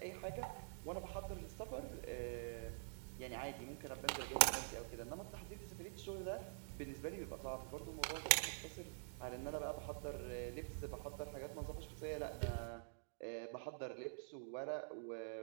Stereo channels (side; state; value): left; silent; digital silence